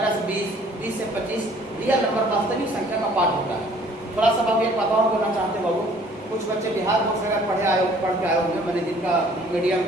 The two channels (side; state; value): both; normal; correlation 0.56